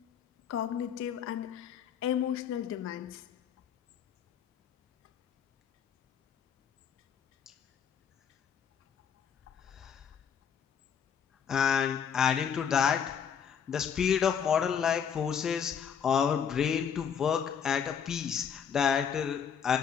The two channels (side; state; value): right; quieter; 7.7 dB